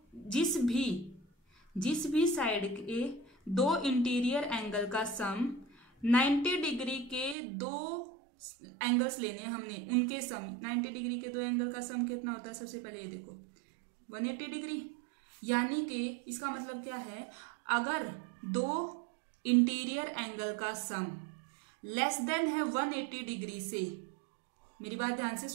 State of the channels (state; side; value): drops out; left; at 7.4 s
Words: जिस भी साइड के दो इंटीरियर एंगल का सम 90 डिग्री के दो एंगल्स लेने हैं हमने, उनके सम 90 डिग्री के दो एंगल का सम कितना होता है, सबसे पहले ये देखो 180 डिग्री। यानी कि इसका मतलब क्या है, अगर दो इंटीरियर एंगल का सम लेस देन है 180 डिग्री से, मेरी बात ध्यान से